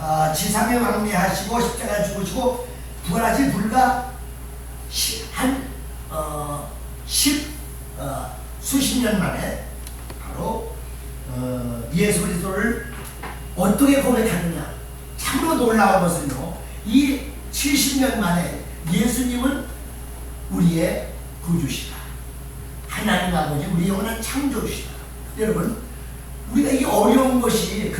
지상에 왕래하시고 십자가 죽으시고 부활하신 불과 수십 년 만에 바로 예수 그리스도를 어떻게 고백하느냐. 참으로 놀라운 것은요, 이 70년 만에 예수님은 우리의 구주시다, 하나님 아버지 우리 영원한 창조주시다. 여러분, 우리가 이 어려운 것이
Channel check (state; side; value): identical; both; correlation 1.00